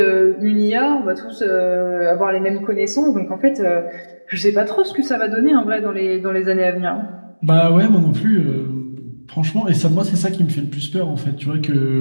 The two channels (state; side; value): inverted; both; correlation -1.00